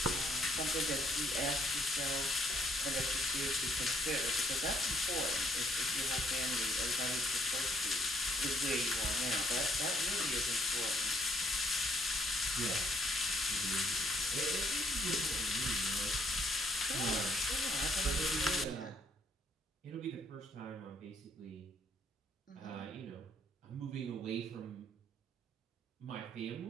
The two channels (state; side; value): normal; both; correlation 0.68